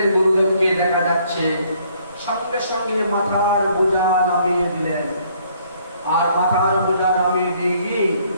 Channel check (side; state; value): both; inverted; correlation -0.64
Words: গুরুদেবকে দেখা যাচ্ছে, সঙ্গে সঙ্গে মাথার বোঝা নামিয়ে দিলেন। আর মাথার বোঝা নামিয়ে দিয়ে